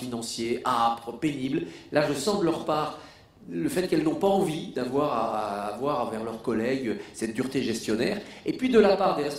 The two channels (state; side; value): identical; both; correlation 1.00